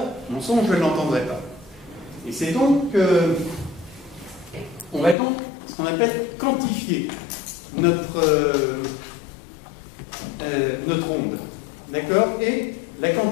mon son, je ne l'entendrais pas. Et c'est donc, on va donc, ce qu'on appelle quantifier notre onde. D'accord? Et la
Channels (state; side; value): drops out; right; at 5.2 s